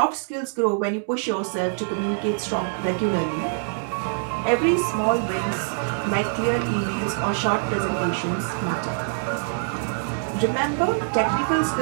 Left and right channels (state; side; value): silent; left; 62 dB below the other